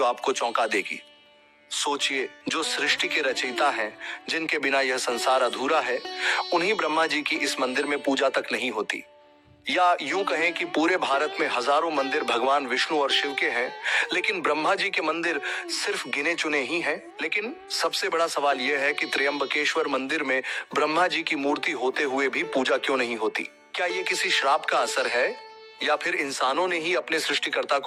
आपको चौंका देगी। सोचिए, जो सृष्टि के रचयिता हैं, जिनके बिना यह संसार अधूरा है, उन्हीं ब्रह्मा जी की इस मंदिर में पूजा तक नहीं होती। या यूं कहें कि पूरे भारत में हजारों मंदिर भगवान विष्णु और शिव के हैं, लेकिन ब्रह्मा जी के मंदिर सिर्फ गिने चुने ही हैं। लेकिन सबसे बड़ा सवाल यह है कि त्र्यंबकेश्वर मंदिर में ब्रह्मा जी की मूर्ति होते हुए भी पूजा क्यों नहीं होती? क्या ये किसी श्राप का असर है, या फिर इंसानों ने ही अपने सृष्टिकर्ता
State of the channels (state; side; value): identical; both; correlation 1.00